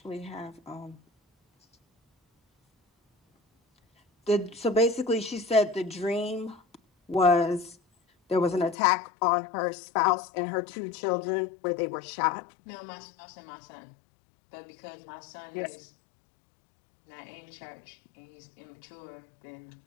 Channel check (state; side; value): drops out; right; at 8.8 s